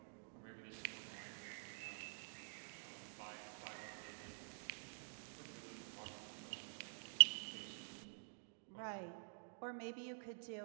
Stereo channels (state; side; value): silent; left; digital silence